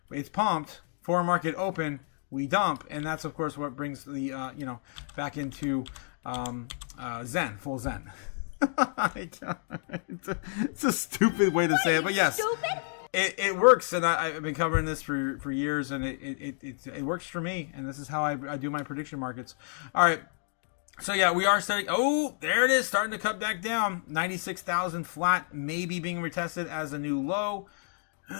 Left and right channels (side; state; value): right; silent; digital silence